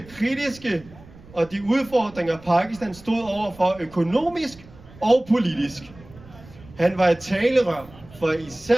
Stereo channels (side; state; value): right; noise; rumble, 21 dB below the sound